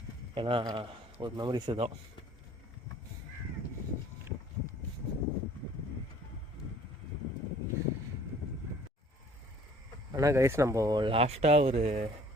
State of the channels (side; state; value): both; normal; correlation 0.54